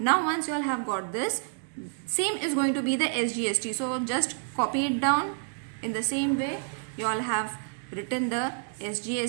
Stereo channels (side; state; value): left; silent; 59 dB below the other